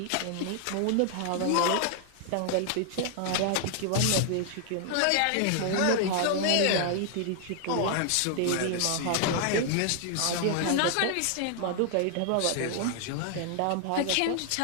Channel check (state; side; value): different; both; correlation 0.00